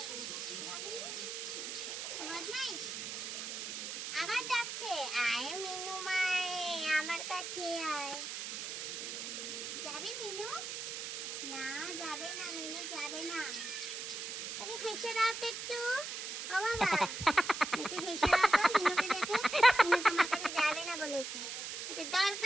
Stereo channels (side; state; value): right; noise; hiss, 5 dB below the sound